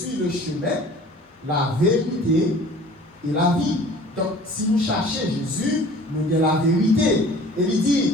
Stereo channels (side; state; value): both; normal; correlation 0.47